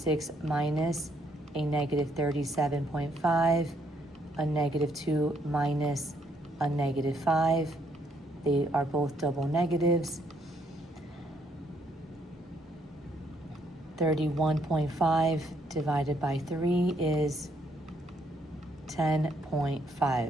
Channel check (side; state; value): both; normal; correlation 0.71